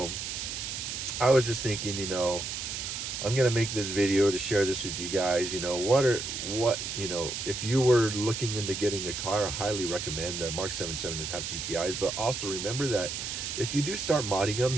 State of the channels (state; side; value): noise; right; hiss, 5 dB below the sound